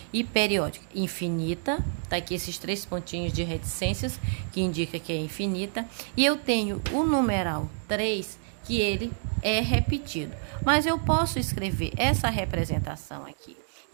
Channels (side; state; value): left; silent; 59 dB below the other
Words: e periódica? Infinita, tá aqui esses 3 pontinhos de reticências, que indica que é infinita. E eu tenho o numeral 3, que ele é repetido. Mas eu posso escrever essa representação aqui,